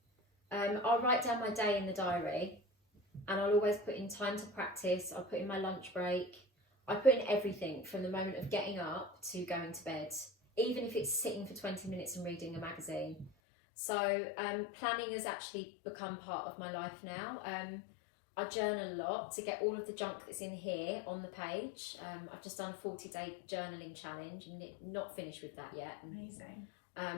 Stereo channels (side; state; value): right; drops out; at 13.3 s